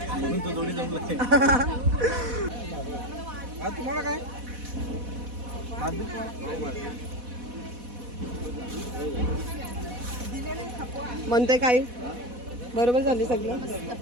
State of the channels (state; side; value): late; left; 4.1 ms